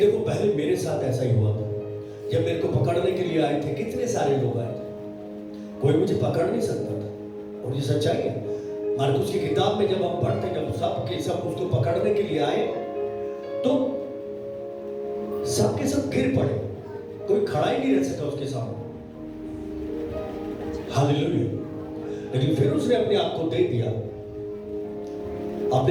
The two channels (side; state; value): both; identical; correlation 1.00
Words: पहले मेरे साथ ऐसा ही हुआ था। जब मेरे को पकड़ने के लिए आए थे, कितने सारे लोग आए थे, कोई मुझे पकड़ नहीं सकता था। और ये सच्चाई है। मार्कुस की किताब में जब हम पढ़ते, जब सब के सब उसको पकड़ने के लिए आए तो सब के सब गिर पड़े, कोई खड़ा ही नहीं रह सका उसके सामने। हालेलुया। लेकिन फिर उसने अपने आप को दे दिया,